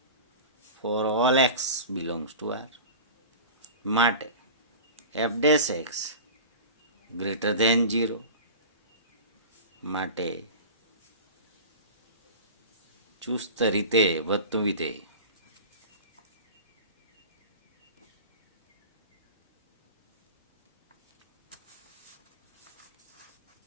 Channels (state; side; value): inverted; both; correlation -0.35